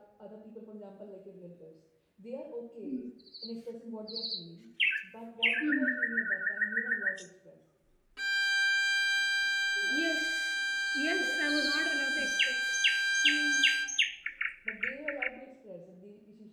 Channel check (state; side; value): identical; both; correlation 1.00